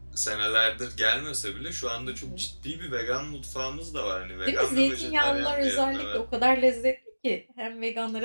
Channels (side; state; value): both; inverted; correlation -1.00